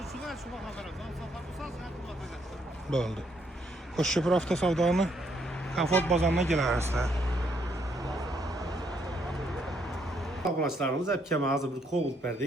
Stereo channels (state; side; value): normal; both; correlation 0.72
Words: Bo'ldi. Qo'shko'pir avtosavdoni Comfort bozoriga kelasizlar. Qonaqlarımız hep hazır bir kovul